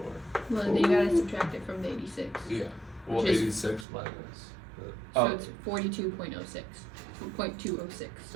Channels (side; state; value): left; drops out; at 3.9 s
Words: Well, then you gotta subtract it from the 86. Yeah. Well, Which is- 86 minus. So Oh. it's 42.06. 0.206.